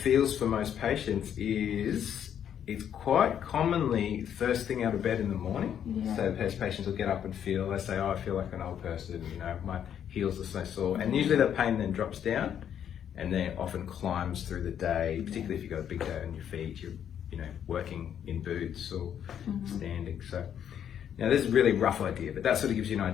for most patients is it's quite commonly first thing out of bed in the morning. So patients will get up and they say, I feel like an old person, my heels are so sore. And usually that pain then drops down and then often climbs through the day, particularly if you've got a big day on your feet, you're working in boots or standing. So now this is a really rough idea, but that sort of gives you an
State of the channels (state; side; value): quieter; right; 9.2 dB